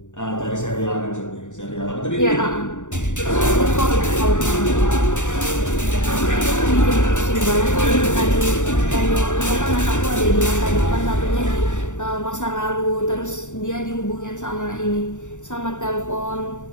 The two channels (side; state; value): right; late; 0.85 ms